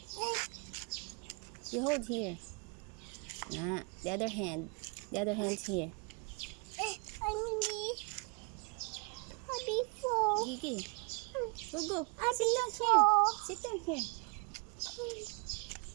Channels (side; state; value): left; quieter; 34.9 dB